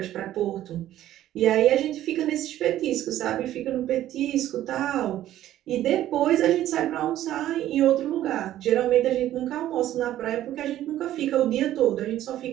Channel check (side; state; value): left; quieter; 13.0 dB